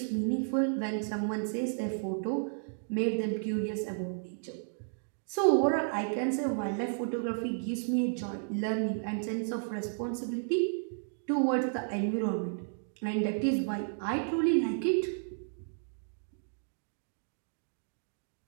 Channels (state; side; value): silent; left; digital silence